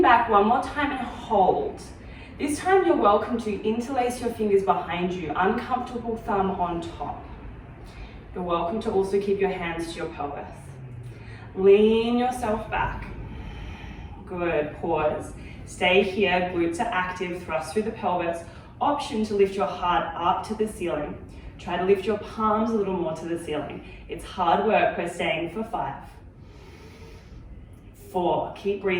back one more time and hold. This time you're welcome to interlace your fingers behind you, uncomfortable thumb on top. You're welcome to also keep your hands to your pelvis. Lean yourself back. Good, pause. Stay here, glutes are active, thrust through the pelvis. Option to lift your heart up to the ceiling. Try to lift your palms a little more to the ceiling. It's hard work, we're staying for 5. 4, keep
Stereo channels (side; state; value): both; identical; correlation 1.00